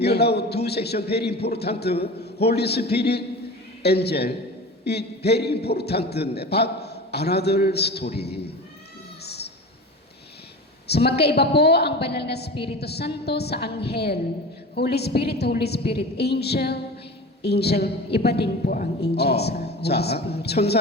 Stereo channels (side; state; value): both; normal; correlation 0.33